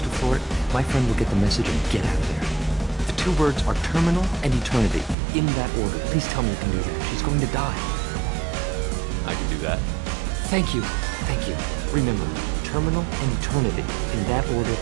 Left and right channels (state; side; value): drops out; left; at 5.2 s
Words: to Florid, my friend will get the message and get out of there. The 2 words are terminal and eternity. In that order. Please tell me you can do that. She's going to die. I can do that. Thank you. Thank you. Remember, terminal and eternity. In that order,